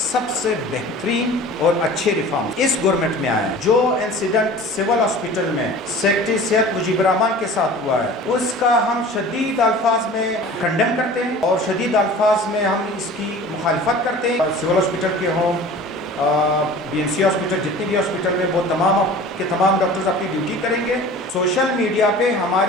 سے بہترین اور اچھے ریفارم اس گورنمنٹ میں آئے ہیں. جو انسیڈنٹ سول ہاسپٹل میں سیکرٹری صحت مجیب الرحمان کے ساتھ ہوا ہے اس کا ہم شدید الفاظ میں کنڈم کرتے ہیں اور شدید الفاظ میں ہم اس کی مخالفت کرتے ہیں. سول ہاسپٹل کے ہوں BMC ہاسپٹل جتنے بھی ہاسپٹل میں وہ تمام کے تمام ڈاکٹرز اپنی ڈیوٹی کریں گے. سوشل میڈیا پہ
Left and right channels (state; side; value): normal; both; correlation 0.41